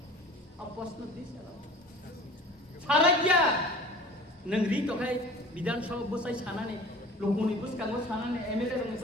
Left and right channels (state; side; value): normal; both; correlation 0.42